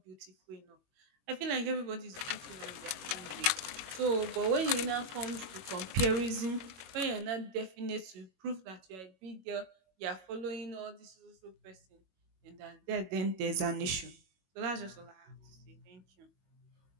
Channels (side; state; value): left; late; 21 ms